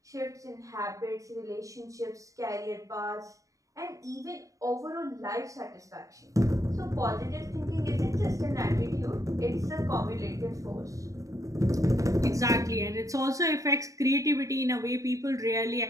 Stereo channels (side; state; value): left; late; 0.16 ms